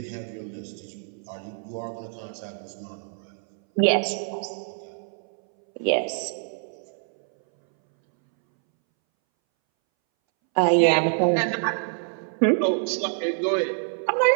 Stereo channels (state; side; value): silent; left; 61 dB below the other